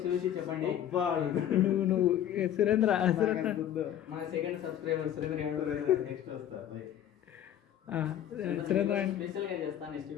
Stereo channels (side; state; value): right; quieter; 10.7 dB